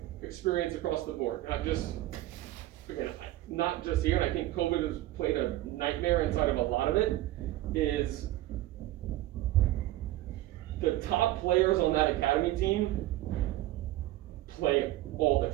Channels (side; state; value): left; quieter; 15.7 dB